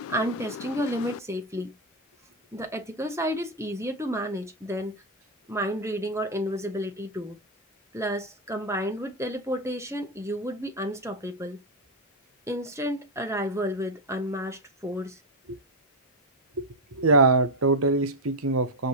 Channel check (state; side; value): normal; both; correlation 0.06